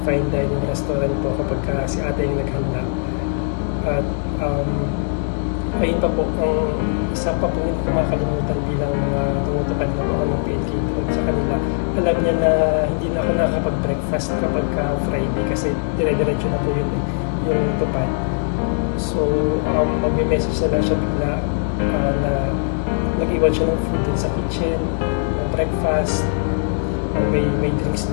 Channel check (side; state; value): right; silent; digital silence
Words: fine dining restaurant po kapag si ate yung naghanda. At ayun pa po, ang isa pa po hindi ko makakalimutan bilang tumutupad na po ako ng PNK doon sa kanila. Alam niya na hindi na ako nakakapag-breakfast kapag Friday kasi dire-diretso na po yun yung tupad. So, magme-message na lang siya bigla na nag-iwan siya ng food dun sa kitchen, ng breakfast, may drinks